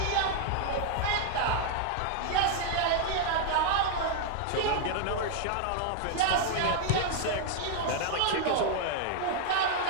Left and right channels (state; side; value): different; both; correlation 0.00